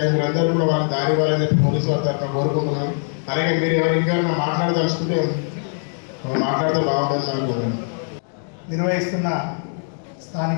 మీరు అందరూ కూడా వాళ్ళకి దారి ఇవ్వాలని చెప్పి పోలీసు వారి తరఫున కోరుకుంటున్నాను. అలాగే మీరు ఎవరు ఇంకా మాట్లాడదలుచుకుంటే మాట్లాడితే బాగుంటుంది అనుకుంటున్నాను. నిర్వహిస్తున్న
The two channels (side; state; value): right; silent; 58 dB below the other